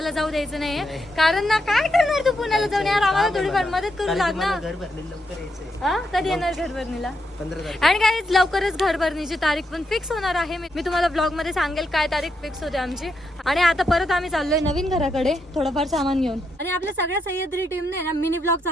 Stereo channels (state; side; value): normal; both; correlation 0.81